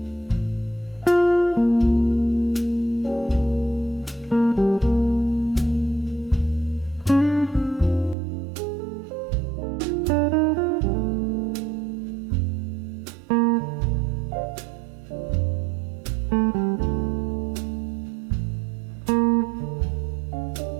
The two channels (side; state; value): left; drops out; at 8.2 s